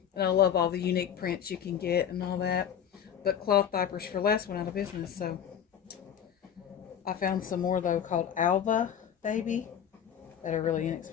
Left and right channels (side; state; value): right; quieter; 8.9 dB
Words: And I love all the unique prints you can get and all that. But cloth diapers for less went out of business, so I found some more though called Alva Baby that are really